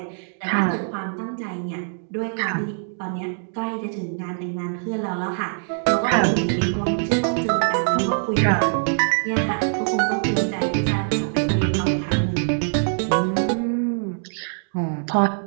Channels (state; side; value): silent; left; digital silence